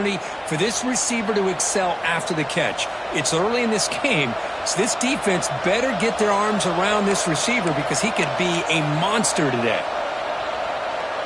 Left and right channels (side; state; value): both; identical; correlation 1.00